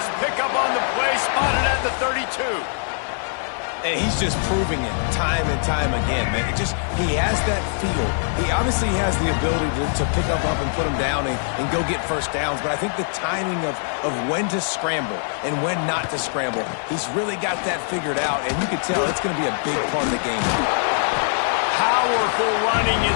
pickup on the play, spotted at the 32. And he's just proving it time and time again, man. He has that feel. He obviously has the ability to pick up and put him down and go get first downs. But I think the timing of when to scramble and when not to scramble, he's really got that figured out. And you can tell it's going to be a big part of the game. Powerful running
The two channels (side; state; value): right; silent; 64 dB below the other